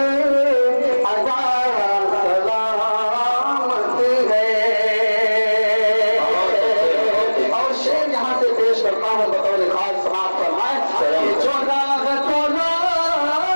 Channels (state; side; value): inverted; both; correlation -1.00